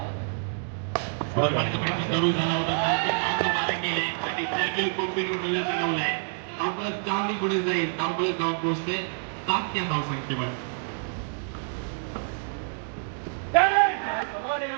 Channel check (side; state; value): left; silent; 60 dB below the other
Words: सुरू झाला होता केले आणि सॅम्युअल कोपे बनवलाय. चांगली पुढे जाईल धावपळत जाऊन पोहोचते 7 या धावसंख्येवर.